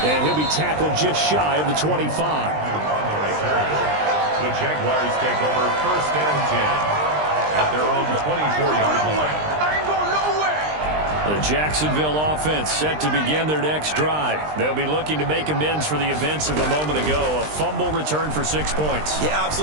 And he'll be tackled just shy of the 25. The Jaguars take over first and 10 at their own 24-yard line. The Jacksonville offense set to begin their next drive. They'll be looking to make amends for the events of a moment ago. A fumble return for 6 points. You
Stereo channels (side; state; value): left; late; 20 ms